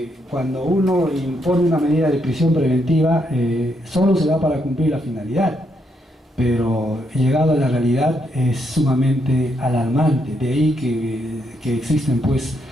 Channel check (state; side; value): normal; both; correlation 0.77